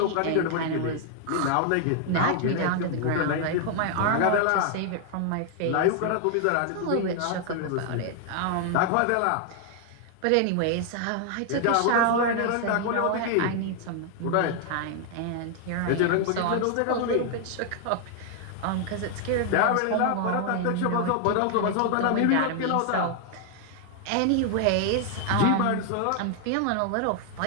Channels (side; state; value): both; different; correlation 0.00